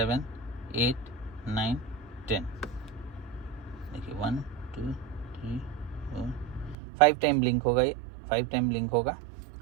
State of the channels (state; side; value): drops out; left; at 6.8 s